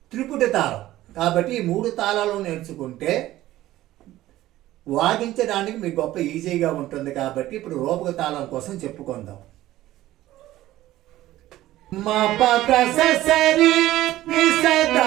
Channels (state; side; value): quieter; left; 15.3 dB